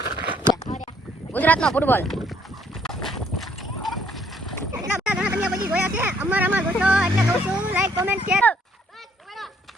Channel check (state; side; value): normal; both; correlation 0.65